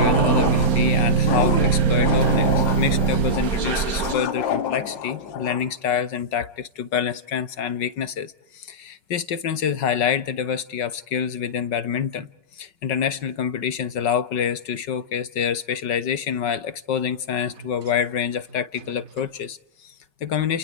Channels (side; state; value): right; late; 5.4 ms